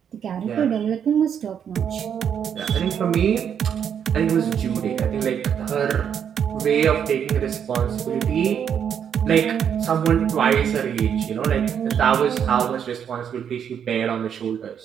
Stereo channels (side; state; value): left; quieter; 8.2 dB